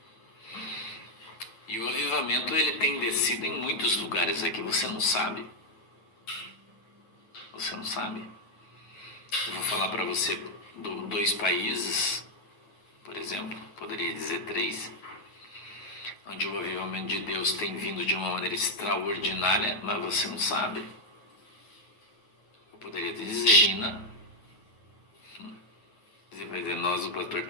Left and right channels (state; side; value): late; right; 9.4 ms